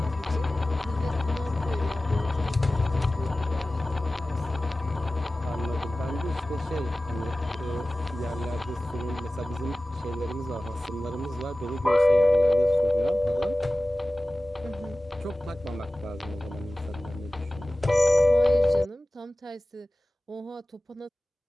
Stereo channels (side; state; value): both; normal; correlation 0.97